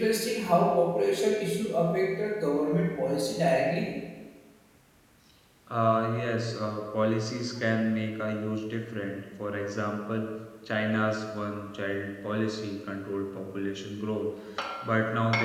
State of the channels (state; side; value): identical; both; correlation 1.00